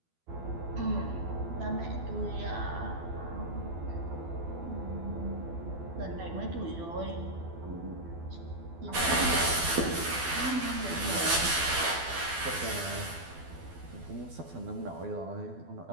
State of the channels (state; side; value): late; left; 12 ms